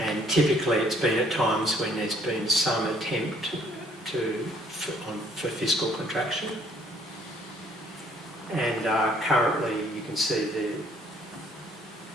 typically it's been at times when there's been some attempt for fiscal contraction. And currently you can see the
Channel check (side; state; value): both; normal; correlation 0.61